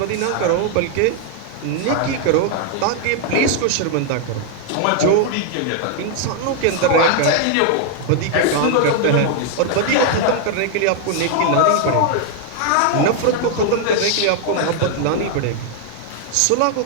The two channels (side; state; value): both; different; correlation 0.00